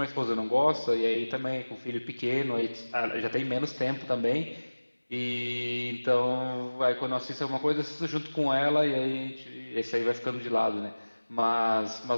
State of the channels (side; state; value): both; inverted; correlation -1.00